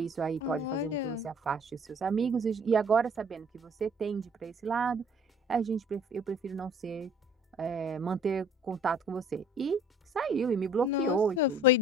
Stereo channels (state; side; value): normal; both; correlation 0.54